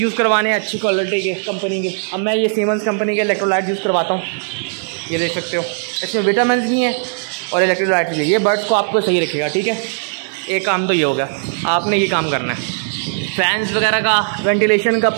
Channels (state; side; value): silent; left; 64 dB below the other